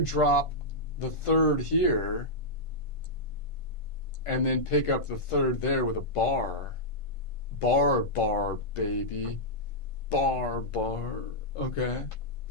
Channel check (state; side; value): late; right; 1.5 ms